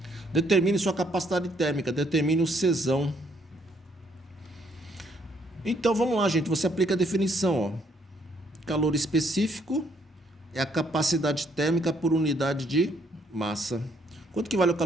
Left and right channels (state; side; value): normal; both; correlation 0.68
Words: Determine sua capacidade térmica, determine o Czão. Então vamos lá, gente, você aplica a definição, ó. Calor específico é a capacidade térmica por unidade de massa. Quanto que vale o